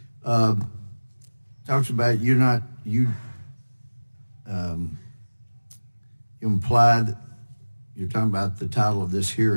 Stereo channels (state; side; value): inverted; both; correlation -1.00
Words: talks about you implied, you're talking about the title of this